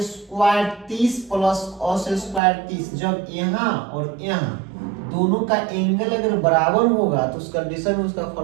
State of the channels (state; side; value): drops out; left; at 2.4 s